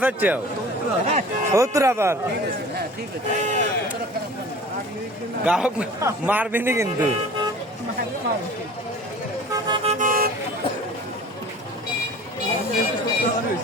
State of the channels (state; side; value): normal; both; correlation 0.43